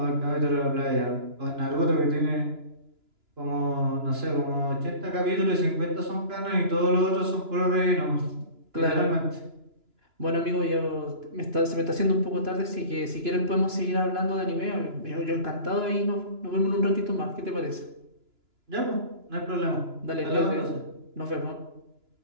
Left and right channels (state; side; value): late; left; 2.9 ms